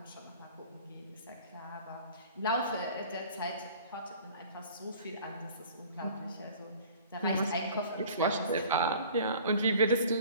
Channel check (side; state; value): both; inverted; correlation -0.47